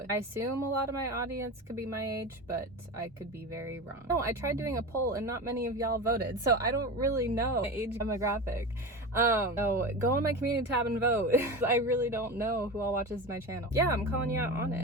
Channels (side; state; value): both; normal; correlation 0.26